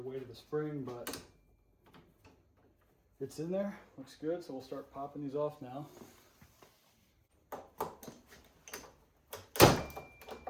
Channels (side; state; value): both; identical; correlation 1.00